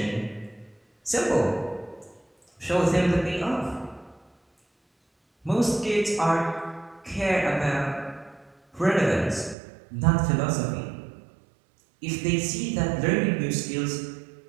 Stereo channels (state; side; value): drops out; left; at 9.6 s